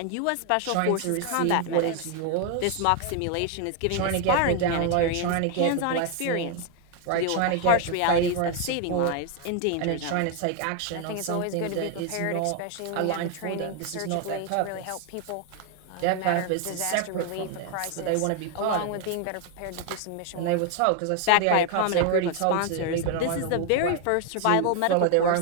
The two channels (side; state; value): both; different; correlation 0.00